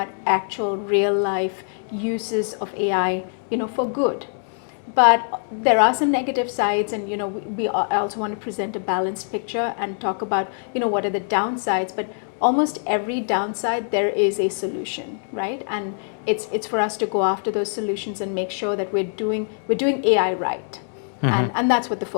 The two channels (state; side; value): silent; right; digital silence